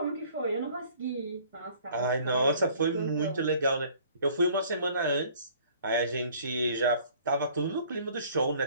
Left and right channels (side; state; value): both; inverted; correlation -0.54